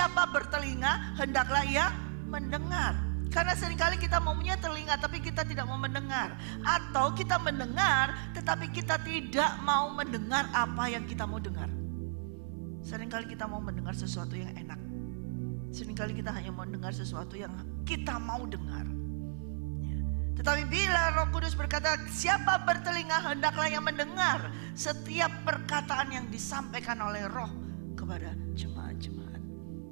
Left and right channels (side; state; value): left; silent; digital silence